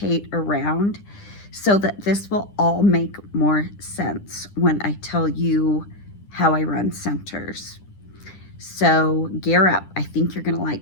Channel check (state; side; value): late; right; 10 ms